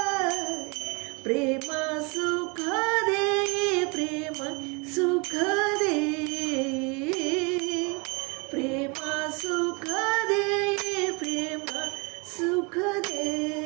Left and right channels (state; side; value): quieter; left; 30.5 dB